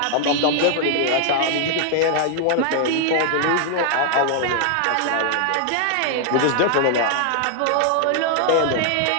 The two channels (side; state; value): both; different; correlation 0.00